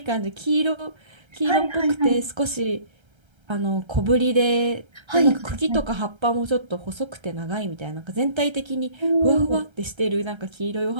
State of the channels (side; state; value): left; late; 1.3 ms